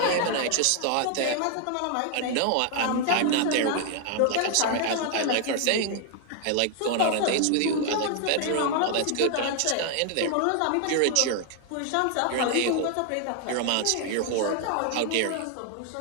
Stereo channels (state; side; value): different; both; correlation 0.00